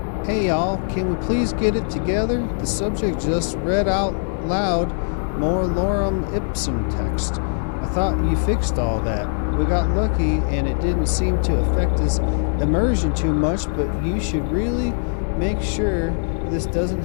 Hey y'all, can we please get it together? The subject just read out loud more lorem ipsum text. I thought you fixed all that. We got lucky and it didn't seem to affect his immersion too much, but you should really make sure this doesn't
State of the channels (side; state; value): right; silent; 65 dB below the other